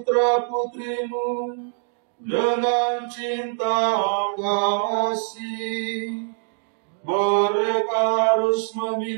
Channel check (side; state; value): left; silent; digital silence